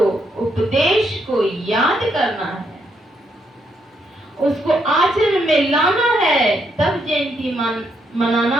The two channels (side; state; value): both; normal; correlation 0.76